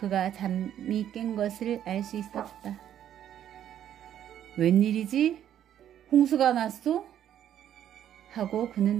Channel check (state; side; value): quieter; left; 10.5 dB